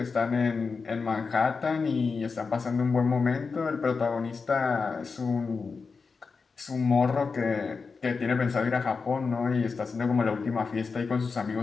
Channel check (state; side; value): quieter; right; 4.8 dB